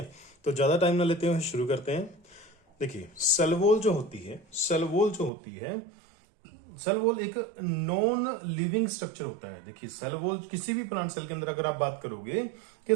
तो ज़्यादा टाइम ना लेते हुए शुरू करते हैं। देखिए, सेल वॉल जो होती है सेल वॉल एक नॉन लिविंग स्ट्रक्चर होता है। देखिए, सेल वॉल किसी भी प्लांट सेल के अंदर अगर आप बात करोगे कि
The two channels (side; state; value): left; drops out; at 5.3 s